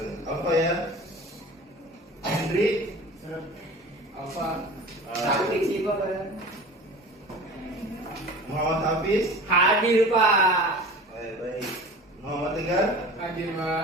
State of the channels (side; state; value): both; normal; correlation 0.39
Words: Apa ya? Hendri. Apa? Sakit sih Pak. Muhammad Hafiz. Hadir Pak. Baik, baik. Muhammad Tegar. Hadir